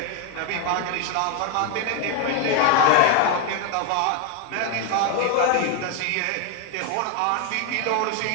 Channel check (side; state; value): both; different; correlation 0.01